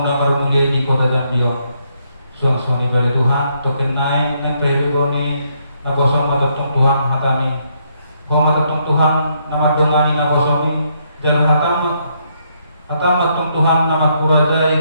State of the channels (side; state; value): both; inverted; correlation -0.74